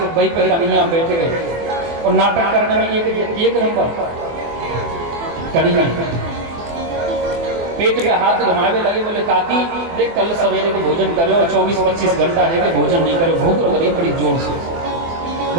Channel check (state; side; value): late; left; 24 ms